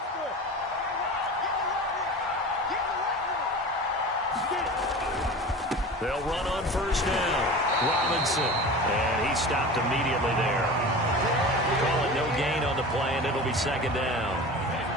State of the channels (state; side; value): normal; both; correlation 0.34